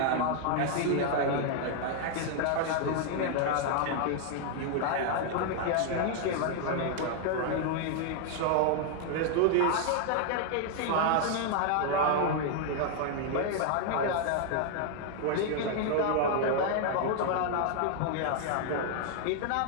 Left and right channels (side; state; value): both; different; correlation 0.00